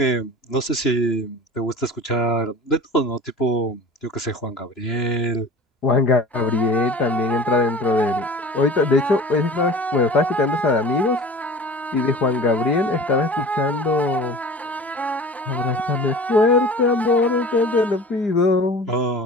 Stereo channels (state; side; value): normal; both; correlation 0.40